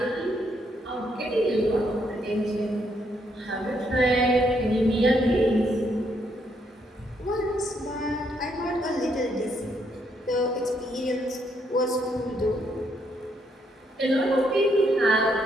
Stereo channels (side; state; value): both; normal; correlation 0.74